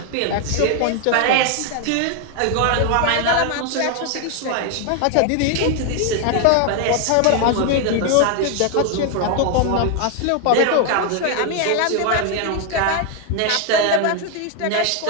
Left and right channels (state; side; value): different; both; correlation 0.00